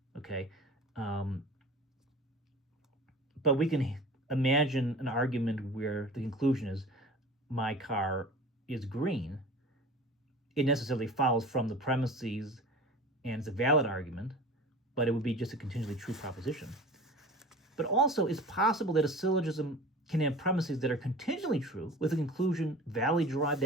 okay? But we can imagine an argument where the conclusion is my car is green. It necessarily follows from the premises, and it's a valid argument, but it would be just a contingently true proposition. But also, it's possible that a syllogism can have premises that are contingently true with a conclusion validly derived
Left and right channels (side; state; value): both; normal; correlation 0.39